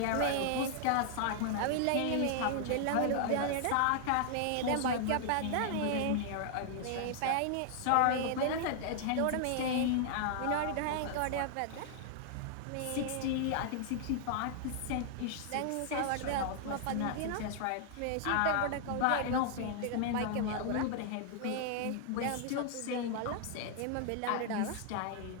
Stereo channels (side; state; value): both; different; correlation -0.01